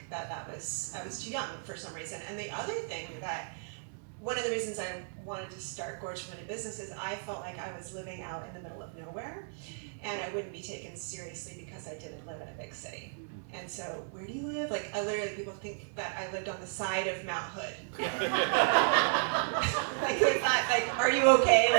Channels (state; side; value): silent; left; digital silence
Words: I was too young for some reason. And the other thing one of the reasons I wanted to start Gorge Women in Business is I felt like I was living out in the middle of nowhere, and I wouldn't be taken seriously because I didn't live in a big city. And so, where do you live? Like, people think that I lived on the side of Mount Hood. Like, they thought, like, are you okay?